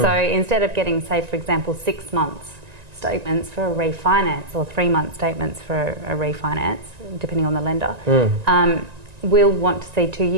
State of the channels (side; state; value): left; late; 1.9 ms